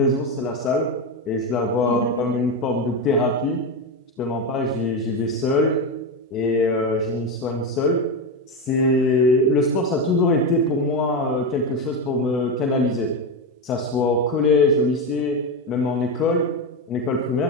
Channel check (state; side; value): normal; both; correlation 0.14